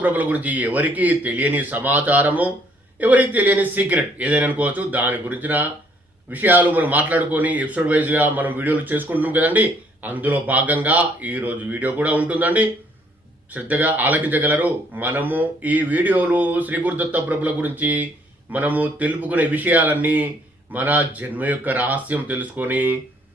ప్రభుల గురించి ఎవరికి తెలియని సమాచారము, ఎవరికి తెలియని సీక్రెట్ ఏదైనా అనుకోవచ్చు, దాని గురించిన విషయాలు మనం మాట్లాడుకొని ఎపిసోడ్ వైజ్గా మనం వీడియోలు చేసుకుంటున్నాం కదండి. అందులో భాగంగా ఈరోజు వీడియో కూడా ఉంటుందండి. శ్రద్ధగా ఆలకించగలరు. మనము ఈ వీడియోలు శ్రీ గురుదత్త ప్రభుల గురించి మనము తెలుపుకునే విషయాలన్నీ మన జన్మ యొక్క రహస్యం తెలుసుకొని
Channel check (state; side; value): normal; both; correlation 0.64